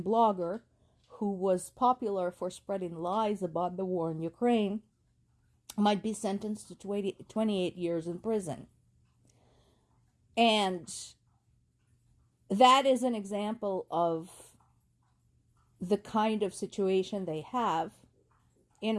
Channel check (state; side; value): identical; both; correlation 1.00